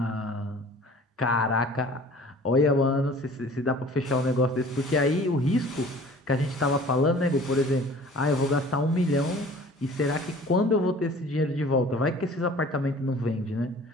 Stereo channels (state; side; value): normal; both; correlation 0.48